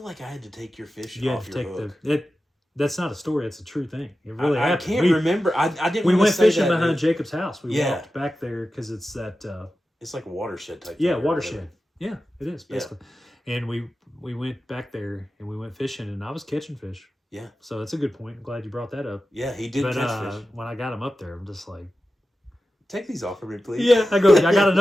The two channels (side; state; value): both; normal; correlation 0.93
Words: like I had to take your fish off your hook. That's not a story. It's a true thing. It really happened. I can't remember. I didn't. We went fishing that, behind Jacob's house. We walked back there because it's that. It's like a watershed type. Yeah, watershed. Yeah, it is basically. Yeah. And we went back there and we went fishing, and I was catching fish. Yeah. So that's a good point. I'm glad you brought that up. Yeah, he did catch fish. When I got him up there, I'm just like, take these off of me, please. Yeah, I got